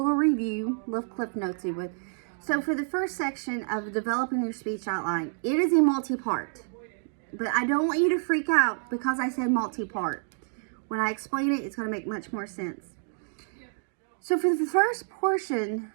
little clip notes you would. So for the first section of developing your speech outline, it is a multi-part, but I don't want you to freak out because I said multi-part. When I explain it, it's going to make much more sense. So for the first portion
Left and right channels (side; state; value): left; silent; digital silence